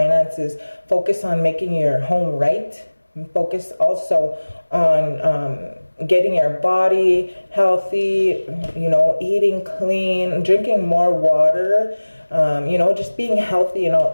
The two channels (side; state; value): both; inverted; correlation -1.00